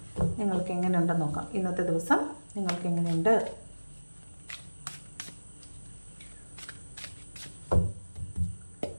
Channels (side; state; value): both; inverted; correlation -1.00